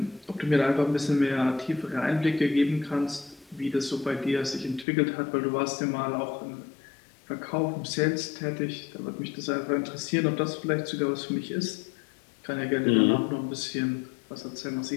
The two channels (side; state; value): right; drops out; at 4.9 s